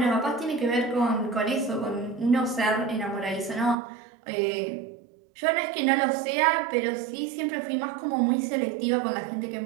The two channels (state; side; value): drops out; left; at 3.8 s